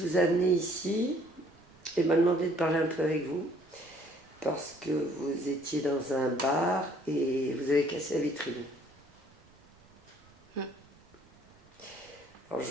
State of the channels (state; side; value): noise; right; rumble, 28 dB below the sound